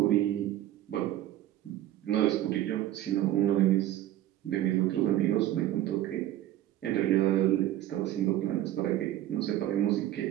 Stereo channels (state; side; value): quieter; left; 13.4 dB